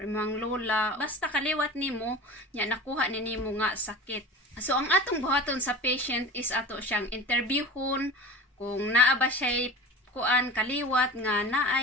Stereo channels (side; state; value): both; normal; correlation 0.35